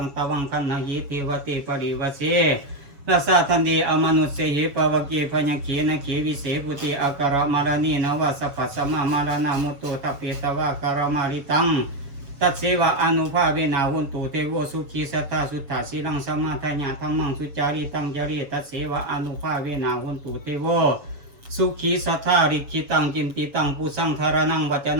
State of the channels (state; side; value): late; left; 7.1 ms